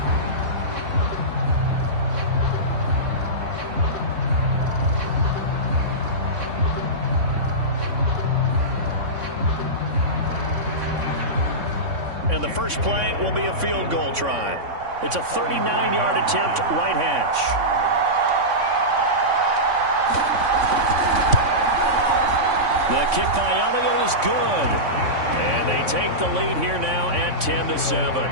And the first play will be a field goal try. It's a 39-yard attempt, right hash. The kick by Elliott is good. And they take the lead here now at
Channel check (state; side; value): late; left; 3.5 ms